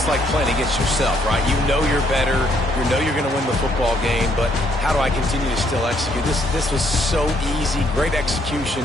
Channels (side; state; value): both; normal; correlation 0.69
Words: like playing against yourself, right? You know you're better. You know you're going to win the football game, but how do I continue to still execute? This was so easy. Great